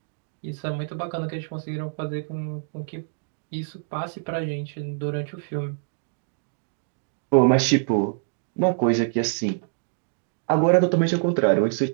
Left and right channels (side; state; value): left; silent; digital silence